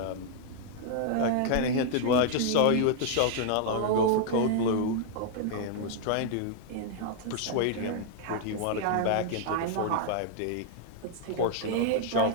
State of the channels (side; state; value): both; different; correlation 0.00